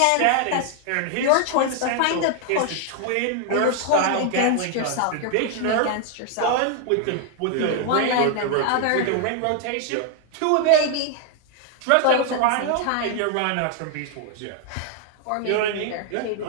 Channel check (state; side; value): different; both; correlation 0.00